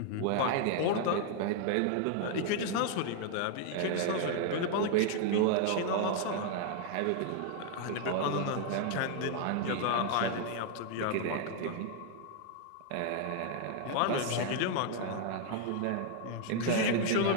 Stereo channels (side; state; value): both; different; correlation 0.00